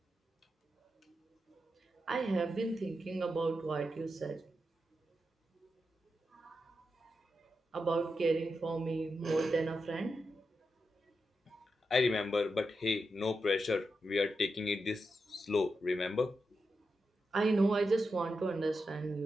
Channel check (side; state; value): both; normal; correlation 0.87